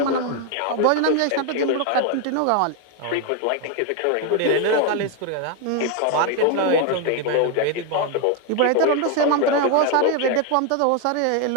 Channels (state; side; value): different; both; correlation 0.01